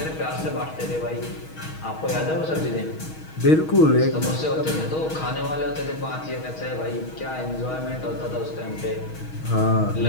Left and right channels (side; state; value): right; late; 6.3 ms